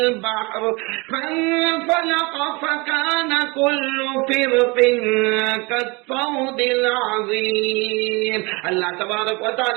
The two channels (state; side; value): quieter; left; 26.6 dB